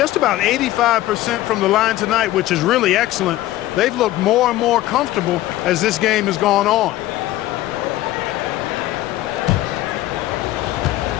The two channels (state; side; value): quieter; right; 15.6 dB